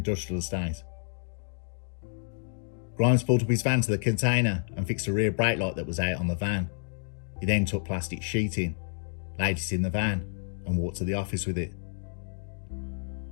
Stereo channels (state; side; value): silent; right; digital silence